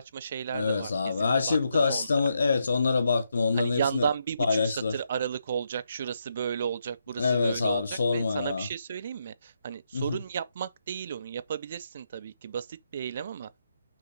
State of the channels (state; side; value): inverted; both; correlation -0.80